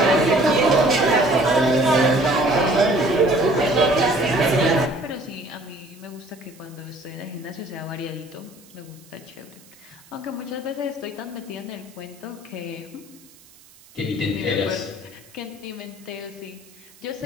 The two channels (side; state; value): right; noise; hiss, 25 dB below the sound